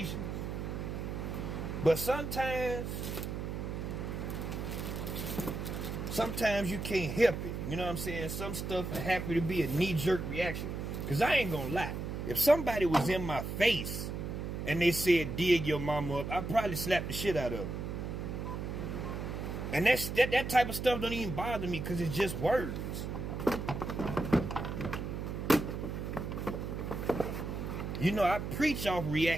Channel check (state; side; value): noise; right; hum, 4 dB below the sound